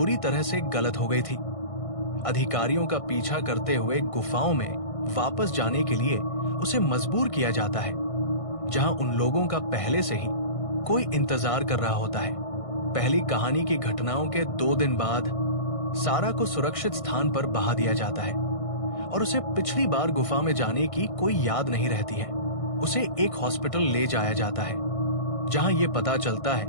तरह से गलत हो गई थी, अधिकारियों का पीछा करते हुए गुफाओं में वापस जाने के लिए उसे मजबूर किया जाता है, जहां उन लोगों का पहले से ही कोई इंतजार कर रहा होता है। पहली कहानी की घटनाओं के 2 दिन बाद सारा को सुरक्षित स्थान पर बहा दिया जाता है और उसे पिछली बार गुफा में जाने की कोई याद नहीं रहती है। उसे एक हॉस्पिटल ले जाया जाता है, जहां यह पता चलता है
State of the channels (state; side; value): late; right; 1.6 ms